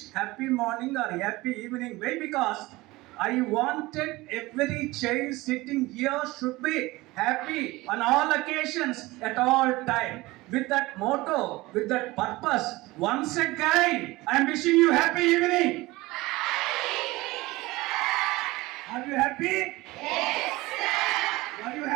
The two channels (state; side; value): quieter; left; 20.4 dB